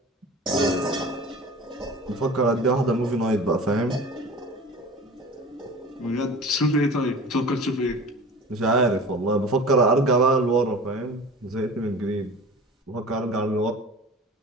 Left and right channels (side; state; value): both; normal; correlation 0.38